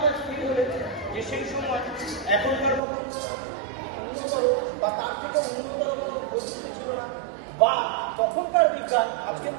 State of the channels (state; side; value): drops out; left; at 2.8 s